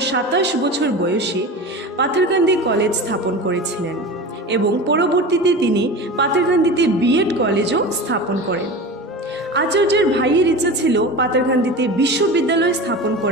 27 বছর বয়সে পাথারকান্দি কলেজ স্থাপন করেছিলেন এবং পরবর্তীতে তিনি পাথারকান্দিতে বিএড কলেজও স্থাপন করেন। আচার্যের ভাইয়ের ইচ্ছা ছিল পাথারকান্দিতে বিশ্ববিদ্যালয় স্থাপন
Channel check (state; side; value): normal; both; correlation 0.30